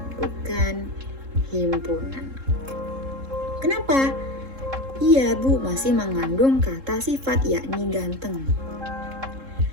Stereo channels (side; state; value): left; late; 3.7 ms